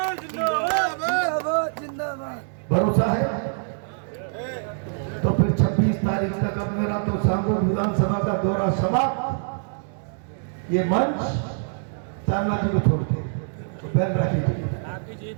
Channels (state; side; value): silent; left; digital silence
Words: भरोसा है तो फिर 26 तारीख तक अब मेरा तो सांगोद विधानसभा का दौरा समाप्त। ये मंच चांदना जी को छोड़ के तो बैल रखी